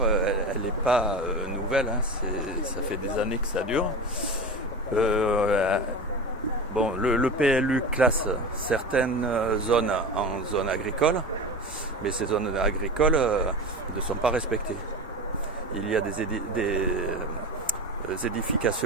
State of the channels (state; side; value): normal; both; correlation 0.28